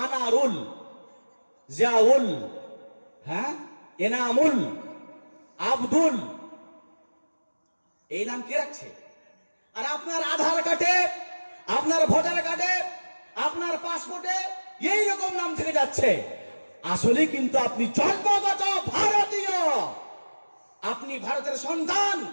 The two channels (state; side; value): inverted; both; correlation -1.00